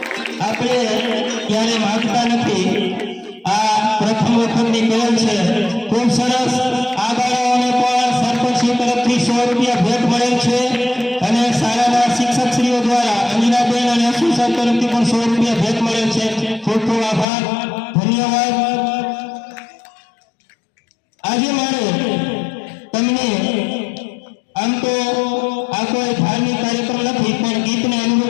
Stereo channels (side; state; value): right; drops out; at 17.2 s